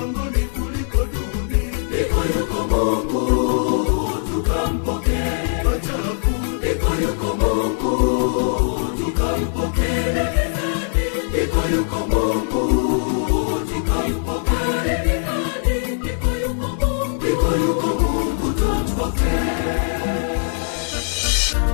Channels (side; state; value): right; silent; digital silence